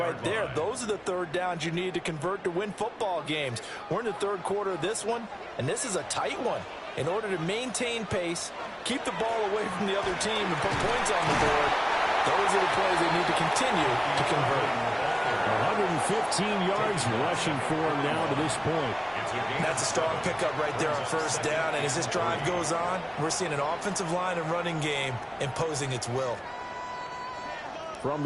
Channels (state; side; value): identical; both; correlation 1.00